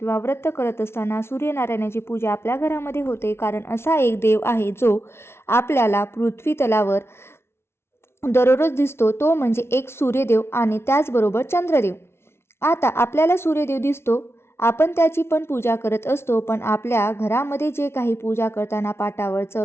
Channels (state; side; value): late; right; 0.12 ms